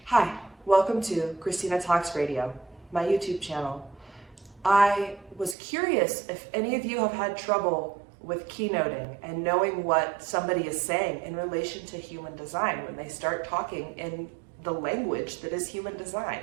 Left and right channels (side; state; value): left; drops out; at 5.6 s